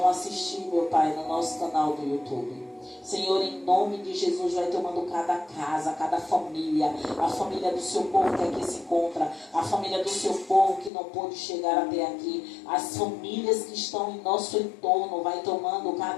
assistir, meu Pai, no nosso canal do YouTube. Senhor, em nome de Jesus, vai tomando cada casa, cada família, a família do seu povo que aqui se encontra, a família do seu povo que não pôde chegar até aqui, as famílias que estão em nosso entorno, vai tomando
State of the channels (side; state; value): right; drops out; at 10.9 s